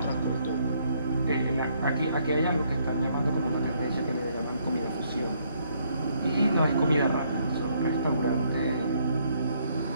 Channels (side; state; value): both; inverted; correlation -0.69